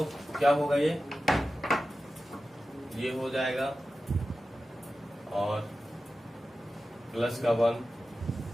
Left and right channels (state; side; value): normal; both; correlation 0.93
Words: क्या होगा ये हो जाएगा और प्लस का 1